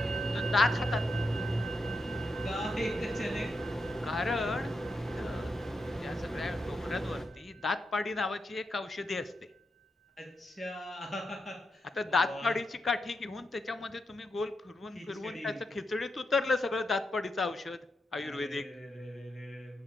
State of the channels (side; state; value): both; normal; correlation 0.85